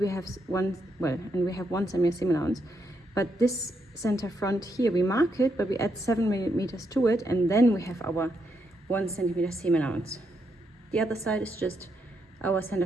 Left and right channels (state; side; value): normal; both; correlation 0.79